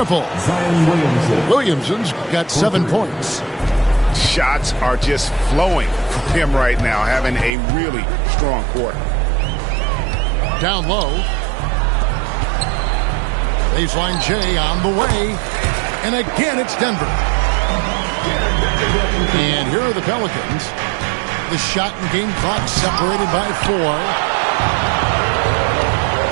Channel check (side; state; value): left; drops out; at 7.5 s